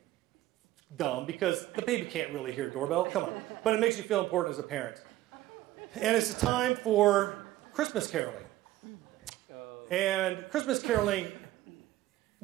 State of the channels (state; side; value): quieter; left; 15.2 dB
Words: dumb because the baby can't really hear a doorbell. Come on. But it makes you feel important as a parent. And it's a time for Christmas caroling. And Christmas caroling,